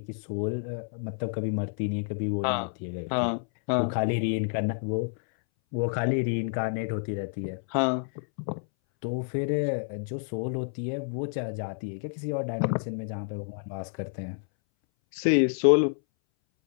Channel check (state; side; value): silent; right; 59 dB below the other